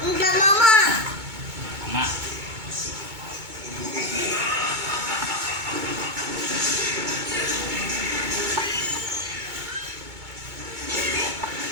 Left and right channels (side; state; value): left; late; 2.2 ms